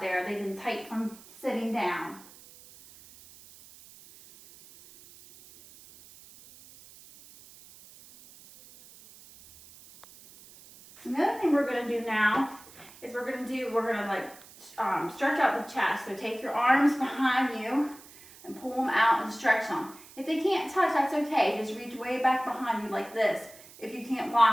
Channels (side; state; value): right; noise; hiss, 21 dB below the sound